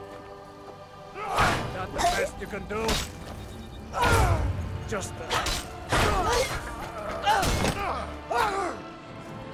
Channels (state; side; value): identical; both; correlation 1.00